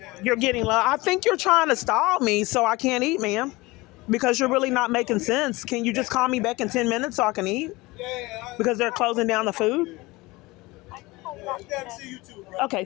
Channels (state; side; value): quieter; right; 21.9 dB